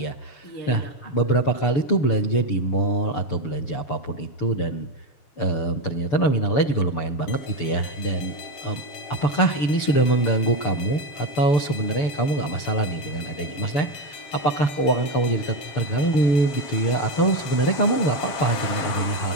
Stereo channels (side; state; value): right; late; 6.9 ms